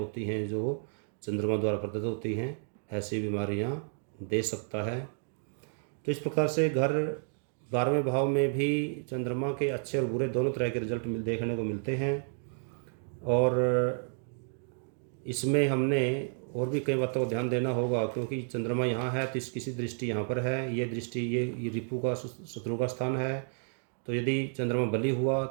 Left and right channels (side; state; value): left; silent; 57 dB below the other